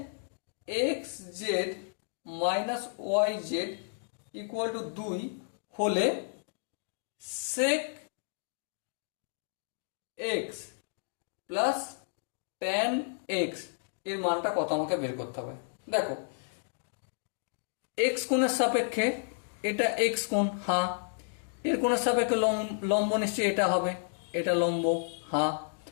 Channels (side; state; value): right; silent; digital silence